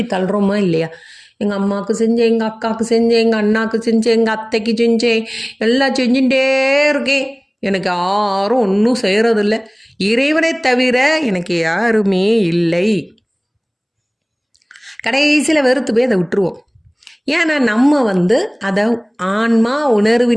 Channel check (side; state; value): both; identical; correlation 1.00